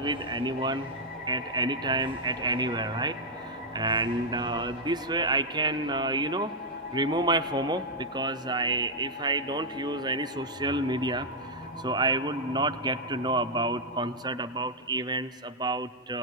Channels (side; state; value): both; normal; correlation -0.02